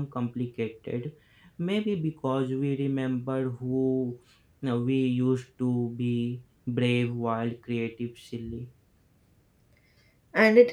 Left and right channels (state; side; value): identical; both; correlation 1.00